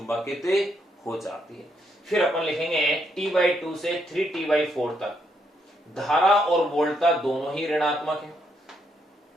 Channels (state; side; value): normal; both; correlation 0.76